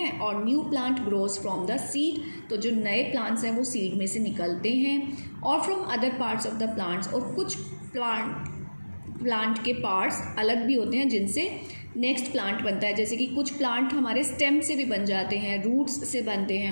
और new plant grows from the seed. तो जो नए plants हैं वो seed में से निकलते हैं, और from other parts of the plants, और कुछ plant के parts अलग भी होते हैं जिनसे नेक्स्ट प्लांट बनता है. जैसे कि कुछ प्लांट हमारे स्टेम से भी बन जाते हैं, रूट्स से बनते हैं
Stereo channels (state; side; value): inverted; both; correlation -1.00